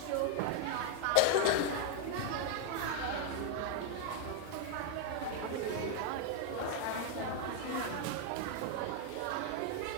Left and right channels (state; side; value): different; both; correlation 0.01